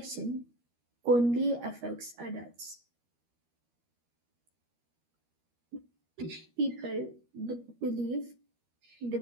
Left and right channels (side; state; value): left; late; 13 ms